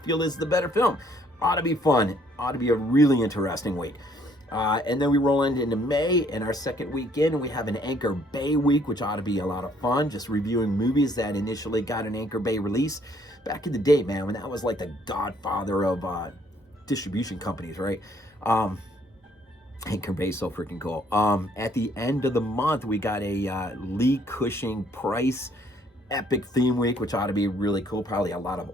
is the better film. Ought to be fun. Ought to be a really interesting week. And then we roll into May, and our second weekend, we have an Anchor Bay week, which ought to be a lot of fun, just reviewing movies that initially got an Anchor Bay release back in the day, man, when that was like the godfather of distribution companies, right? Anchor Bay, so freaking cool. At the end of the month, we got a Lee Cushing Price epic theme week, which ought to be really cool. Probably a lot of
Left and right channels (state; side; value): normal; both; correlation 0.64